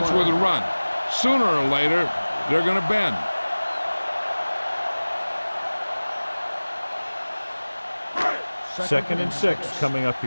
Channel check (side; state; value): both; inverted; correlation -1.00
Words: with a run. Sooner or later, they're going to bend. Second and 6 coming up